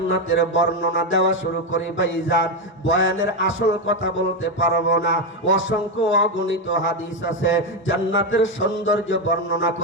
বর্ণনা দেওয়া শুরু করি ভাইজান, বয়ানের আসল কথা বলতে পারবো না। অসংখ্য অগণিত হাদিস আছে জান্নাতের সৌন্দর্য বর্ণনা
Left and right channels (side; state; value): both; normal; correlation 0.09